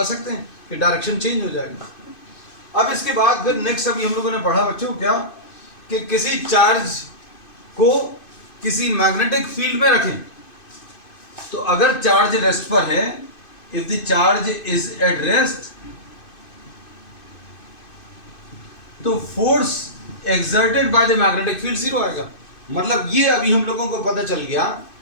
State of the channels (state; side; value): late; right; 2.5 ms